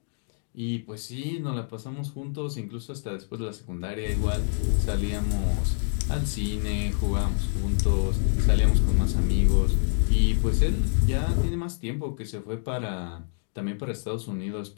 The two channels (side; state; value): right; silent; digital silence